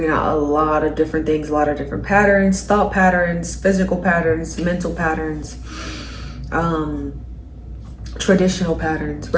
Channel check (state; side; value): identical; both; correlation 1.00